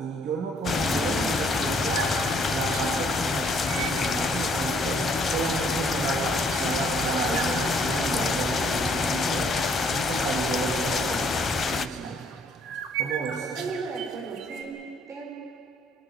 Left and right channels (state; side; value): normal; both; correlation 0.65